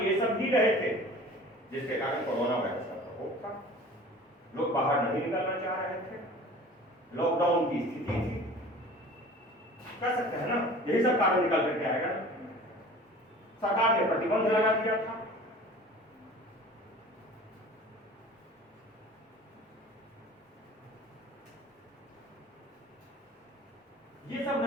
सब ही रहे थे, जिसके कारण कोरोना वायरस का प्रकोप था, लोग बाहर नहीं निकलना चाह रहे थे, लॉकडाउन की स्थिति थी, कह सकते हैं ना, यही सब कारण निकल करके आएगा। सरकार ने प्रतिबंध लगा दिया था, ये सब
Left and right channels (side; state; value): both; normal; correlation 0.43